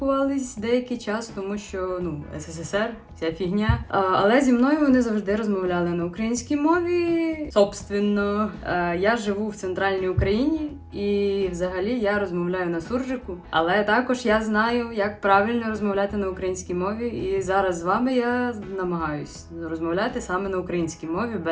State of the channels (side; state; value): both; identical; correlation 1.00